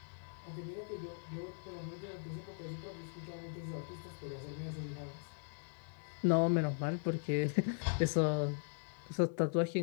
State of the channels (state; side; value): silent; right; 52 dB below the other